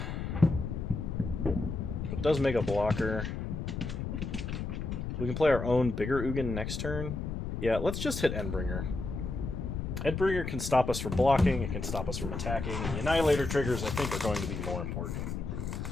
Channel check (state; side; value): noise; left; rumble, 4 dB below the sound